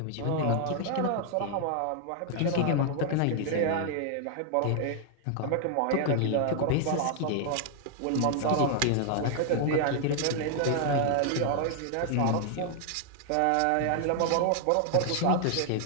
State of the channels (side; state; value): both; different; correlation 0.00